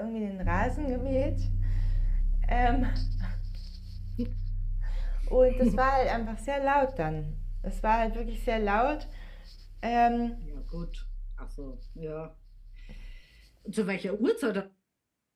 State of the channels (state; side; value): identical; both; correlation 1.00